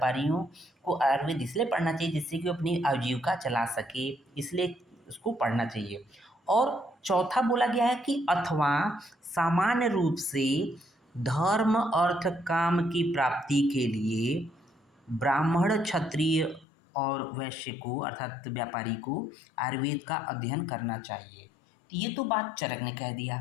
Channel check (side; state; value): right; drops out; at 16.7 s